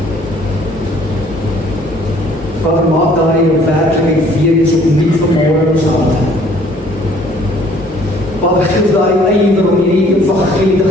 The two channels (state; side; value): normal; both; correlation 0.58